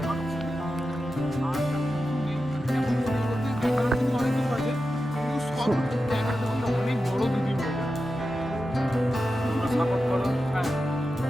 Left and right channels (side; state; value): both; normal; correlation 0.91